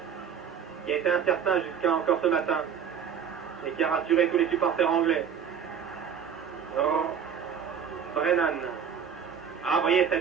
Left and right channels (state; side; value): quieter; left; 7.6 dB